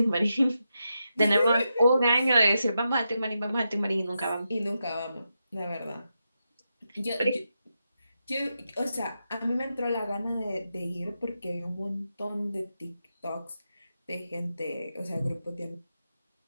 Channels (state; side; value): inverted; both; correlation -0.87